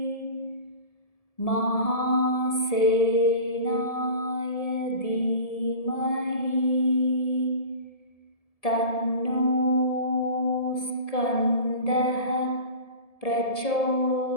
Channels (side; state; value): right; late; 1.7 ms